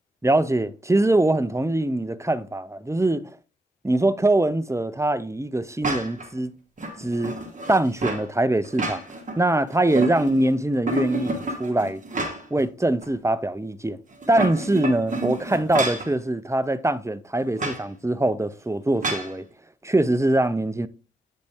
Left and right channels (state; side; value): normal; both; correlation 0.81